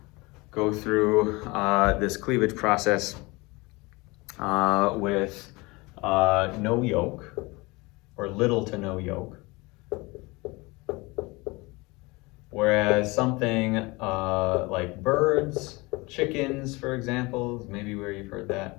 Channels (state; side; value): quieter; right; 24.3 dB